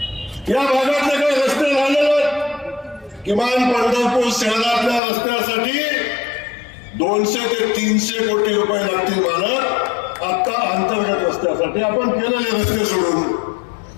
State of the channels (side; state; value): right; drops out; at 5.0 s